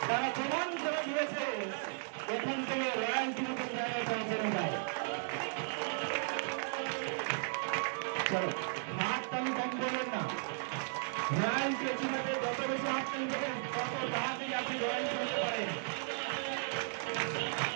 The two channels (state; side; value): silent; left; digital silence